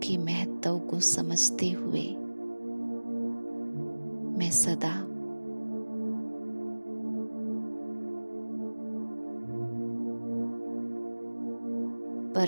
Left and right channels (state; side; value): inverted; both; correlation -1.00